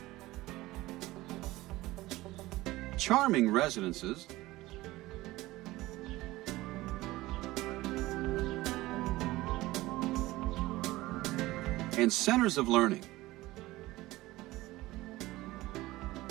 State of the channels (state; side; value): quieter; left; 18.4 dB